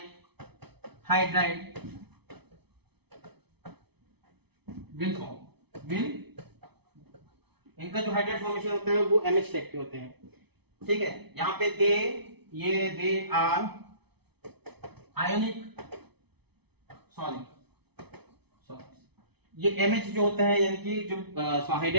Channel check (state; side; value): late; left; 0.98 ms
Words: हाइड्राइड विल इनका जो हाइड्राइड फॉर्मेशन होता है वो MH टाइप के होते हैं। ठीक है, यहाँ पे दे आर आयोनिक सॉलिड। ये MH जो होता है यानी कि जो